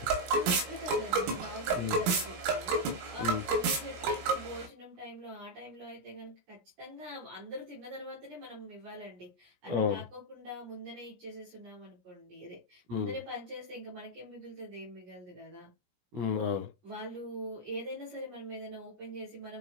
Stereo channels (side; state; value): left; late; 17 ms